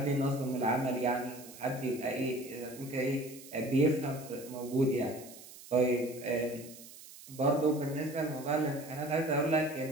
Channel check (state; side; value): noise; right; hiss, 17 dB below the sound